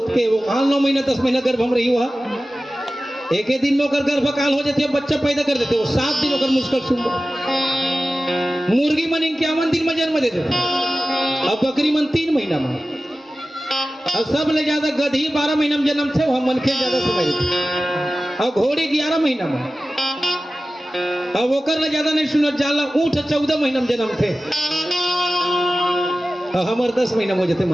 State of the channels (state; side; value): normal; both; correlation 0.95